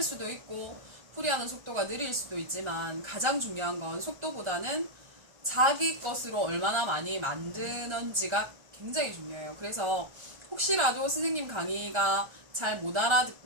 수도 있고 풀이하는 속도가 느릴 수도 있지만 가장 중요한 건 속도보다는 자기 것으로 얼마나 많이 만드는지가 굉장히 중요해요. 그래서 혹시라도 선생님 강의가 잘 못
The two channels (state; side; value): late; left; 1.3 ms